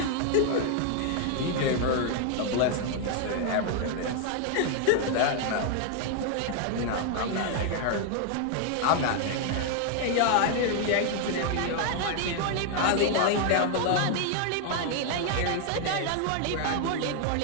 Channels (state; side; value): different; both; correlation 0.00